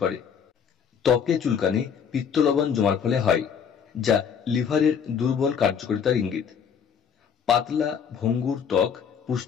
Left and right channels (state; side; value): quieter; right; 7.2 dB